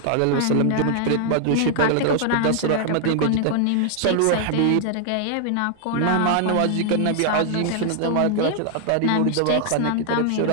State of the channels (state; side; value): different; both; correlation 0.00